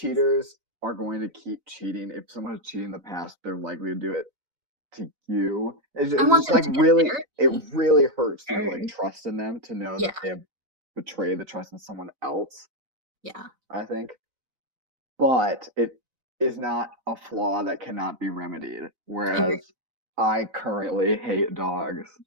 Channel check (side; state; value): left; late; 4.0 ms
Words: are going to keep cheating. If someone has cheated in the past, they're likely to do it to you. I It's want just them like to get really, it therapy. really hurts your like Or, trust in them to know yeah, that they have betrayed the trust in someone else. yeah. I think, but it is not a flaw that cannot be remedied. I agree. Whereas I currently hate dogs,